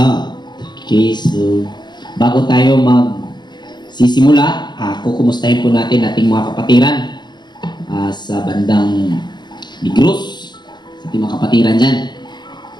Okay, so bago tayo magsisimula, kukumustahin po natin ating mga kapatiran sa bandang Negros, sa ating mga kapatiran dyan.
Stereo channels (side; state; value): right; late; 0.21 ms